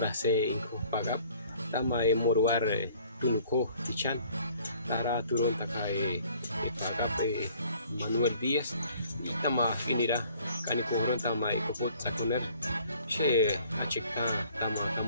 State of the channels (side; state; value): both; inverted; correlation -0.56